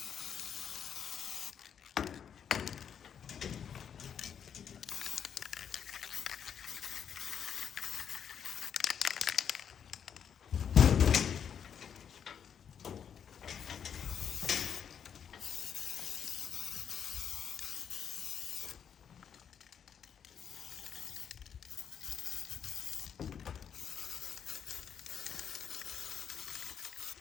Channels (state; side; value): quieter; right; 8.0 dB